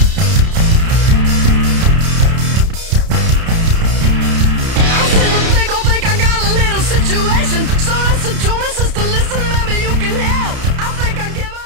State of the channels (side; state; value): left; late; 31 ms